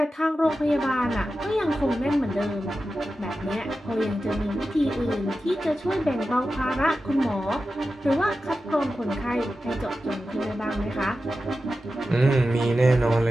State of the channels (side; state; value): both; normal; correlation 0.92